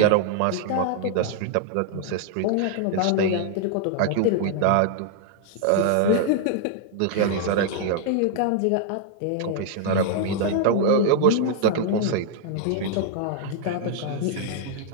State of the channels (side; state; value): both; different; correlation -0.01